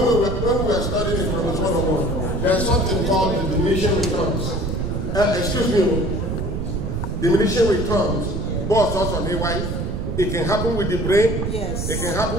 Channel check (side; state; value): right; noise; rumble, 2 dB below the sound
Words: we were studying economics 101, there's something called the diminishing returns. Excuse me, diminishing returns, both also on AY. It can happen with the brain. Yes. It can